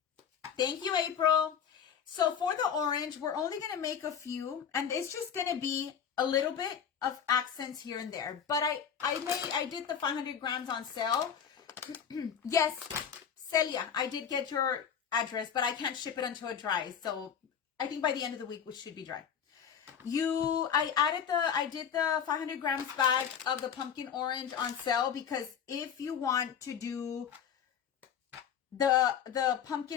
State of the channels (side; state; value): right; quieter; 7.9 dB